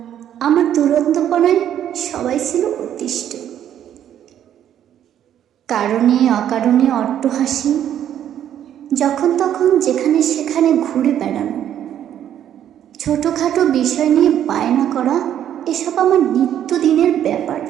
আমার দুরন্তপনায় সবাই ছিল অতিষ্ঠ। কারণে অকারণে অট্টহাসি, যখন তখন যেখানে সেখানে ঘুরে বেড়ানো, ছোটোখাটো বিষয় নিয়ে বায়না করা, এসব আমার নিত্যদিনের ব্যাপার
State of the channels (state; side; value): quieter; left; 10.4 dB